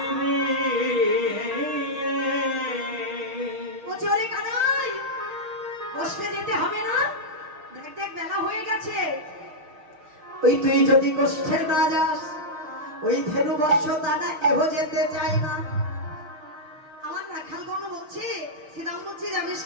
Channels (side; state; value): left; late; 6.1 ms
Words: রে বলছে ওরে কানাই, বসতে যেতে হবে না, দেখ দেখ বেলা হয়ে গেছে। ওই তুই যদি কষ্টে না যাস, ওই ধেনু বর্ষ দাদা কেহ যেতে চায় না। আমার রাখাল গণ বলছে, শ্রীরাম বলছে জানিস